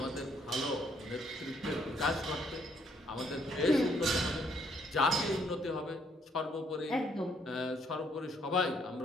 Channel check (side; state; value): both; normal; correlation 0.69